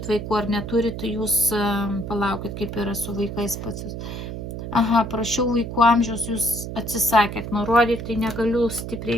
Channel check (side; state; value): right; noise; hum, 7 dB below the sound